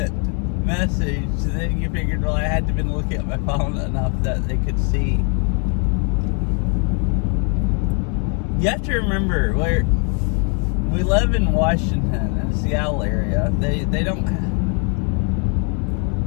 message, so then you figured, well, I had to have been looking at my phone enough that they could see. You have to remember, we live in Washington, in the Seattle area. They don't...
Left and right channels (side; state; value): right; quieter; 38.6 dB